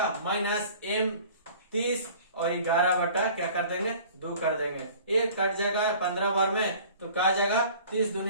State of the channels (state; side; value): inverted; both; correlation -0.47